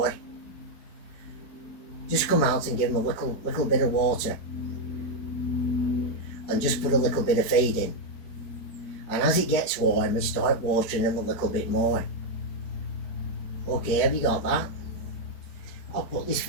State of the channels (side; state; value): right; late; 4.9 ms